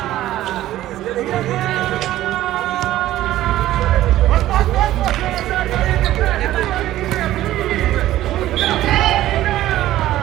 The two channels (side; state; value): left; quieter; 14.3 dB